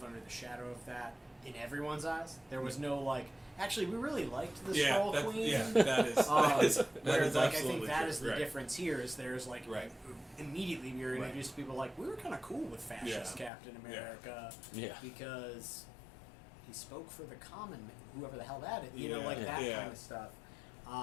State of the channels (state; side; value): drops out; right; at 13.5 s